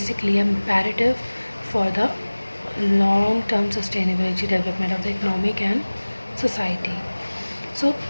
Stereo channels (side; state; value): both; inverted; correlation -1.00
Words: imperative for the long-term sustainability development of the economic and society. So,